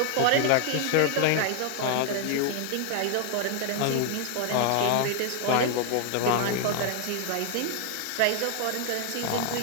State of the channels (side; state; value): both; different; correlation 0.00